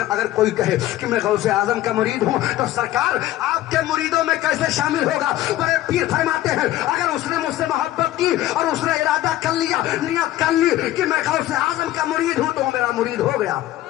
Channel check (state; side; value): quieter; right; 14.5 dB